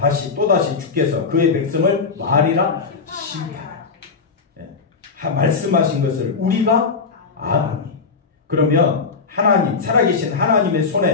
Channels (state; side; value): quieter; right; 4.8 dB